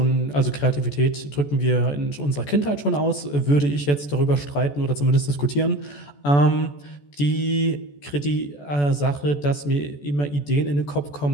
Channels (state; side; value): late; right; 14 ms